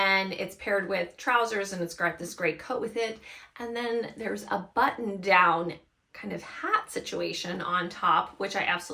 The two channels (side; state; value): both; identical; correlation 1.00